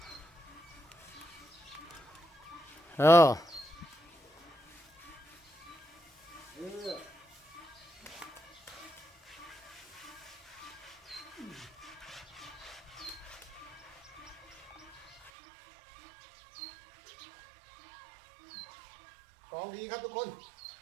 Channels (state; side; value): drops out; left; at 15.3 s